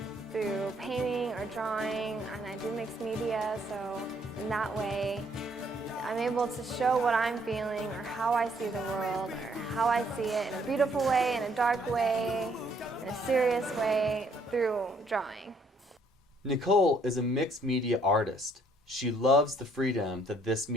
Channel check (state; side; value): normal; both; correlation 0.66